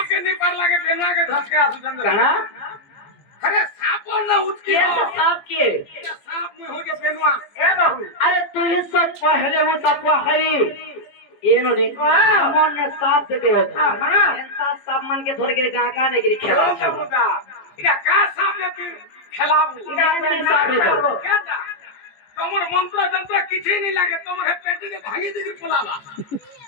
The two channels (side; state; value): right; late; 14 ms